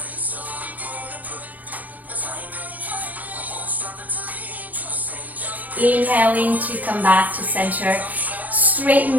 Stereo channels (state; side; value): late; left; 0.079 ms